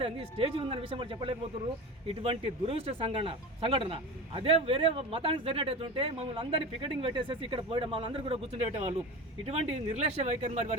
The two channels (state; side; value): normal; both; correlation 0.29